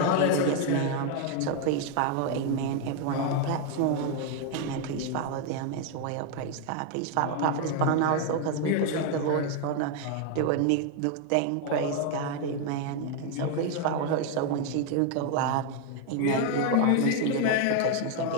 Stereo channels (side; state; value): both; different; correlation 0.01